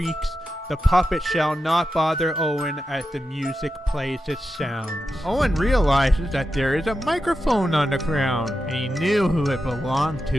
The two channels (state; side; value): normal; both; correlation 0.89